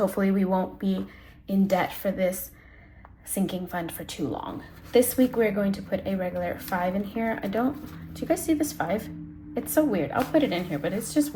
we won't be in debt for this sinking fund for too long. This week we're going to put a regular 5 in here. Do you guys see this 5? It's so weird. I'll put it in here, but it's just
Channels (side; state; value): both; identical; correlation 1.00